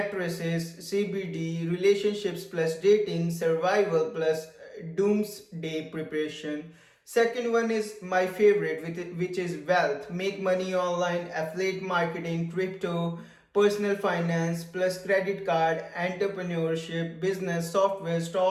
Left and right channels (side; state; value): both; identical; correlation 1.00